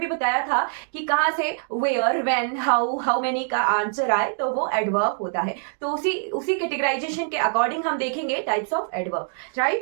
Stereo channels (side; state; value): left; silent; digital silence